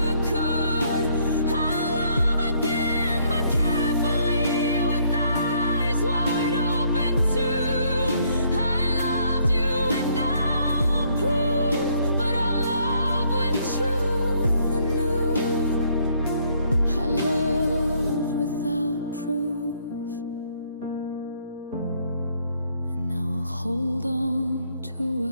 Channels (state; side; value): inverted; both; correlation -0.67